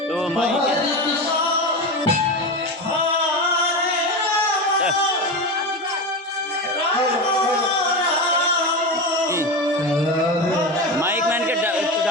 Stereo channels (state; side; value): normal; both; correlation 0.21